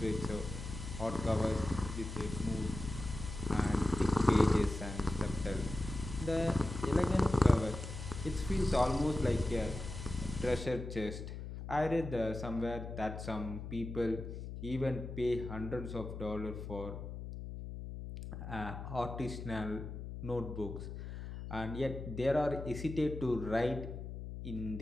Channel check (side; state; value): left; noise; hum, 8 dB below the sound